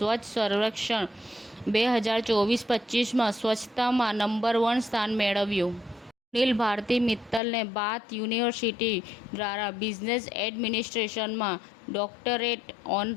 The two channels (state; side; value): drops out; right; at 7.4 s